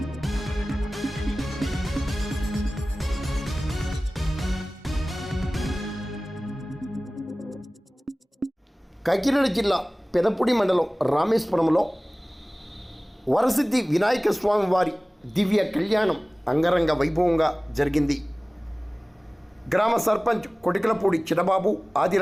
కాకినాడ జిల్లా పెదపూడి మండలం రామేశ్వరంలో వరసిద్ధి వినాయక స్వామి వారి దివ్య కళ్యాణం అంగరంగ వైభవంగా జరిగింది. గ్రామ సర్పంచ్ కొటికలపూడి చిన్నబాబు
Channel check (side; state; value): both; normal; correlation 0.98